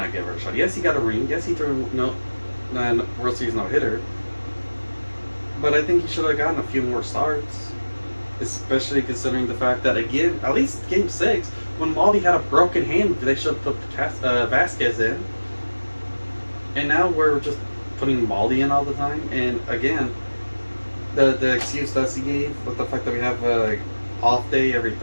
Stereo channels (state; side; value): inverted; both; correlation -1.00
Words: get a fair shot. Yes, he got a ring. Yes, he threw World Series no-hitter, but I think he should have gotten a few more starts, especially considering the fact that, again, at least Game 6, when Maldi had a broken hand, they should have put Vasquez in. And now we're just putting Maldi in all the time. And again, the excuse that he gave with the fact that we have a off day every